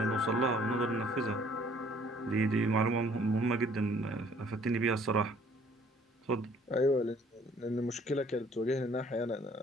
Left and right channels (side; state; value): both; normal; correlation 0.58